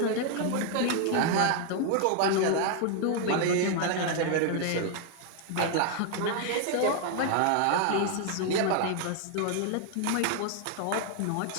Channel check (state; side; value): different; both; correlation 0.00